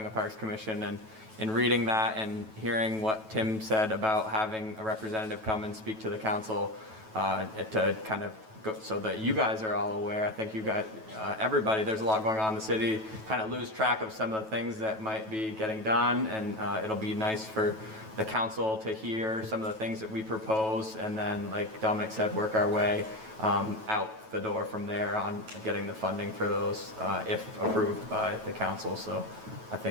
a Parks Commission, and in reading that and hearing what Tim said about having a representative come and speak to the council to kind of go, so that you guys are all aware. I think you got everybody, there's a lot going on in the city, kind of lose track of some of the things that might be getting done, and it'll be nice for the council to hear some of the things that we propose, and then, like Dominic said, work our way out the door from there on getting the funding for those if approved by the council. So I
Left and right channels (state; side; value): late; left; 9.2 ms